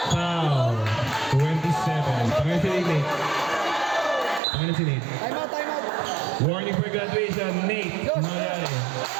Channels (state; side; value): drops out; left; at 4.4 s